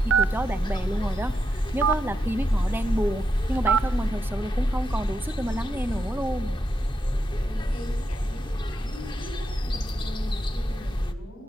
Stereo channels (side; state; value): both; normal; correlation 0.85